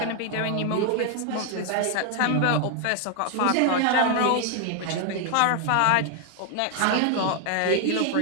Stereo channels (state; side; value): different; both; correlation 0.00